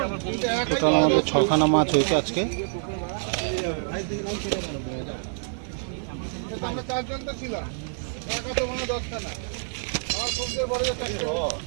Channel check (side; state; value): left; silent; digital silence